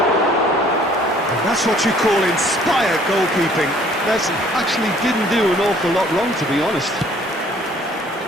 And that's what you call inspired goalkeeping. Messi actually didn't do an awful lot wrong, to be honest.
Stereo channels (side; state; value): both; normal; correlation 0.58